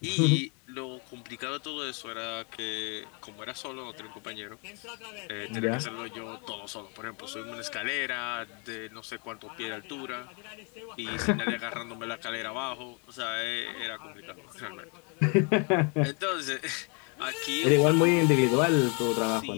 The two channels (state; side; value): quieter; right; 35.5 dB